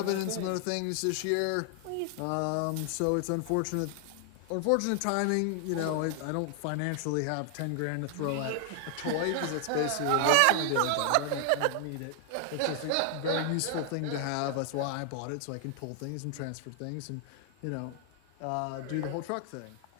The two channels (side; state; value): both; different; correlation 0.00